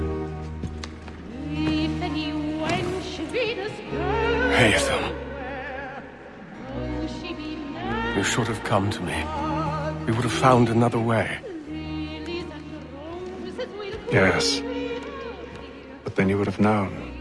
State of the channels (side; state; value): both; identical; correlation 1.00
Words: Haytham. You should have come to me. We would have found another way. Yes. But then you would have known.